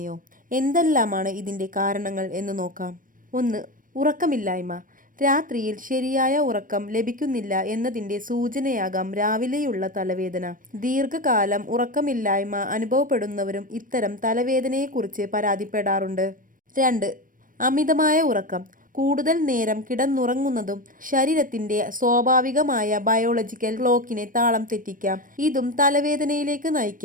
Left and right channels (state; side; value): late; left; 0.40 ms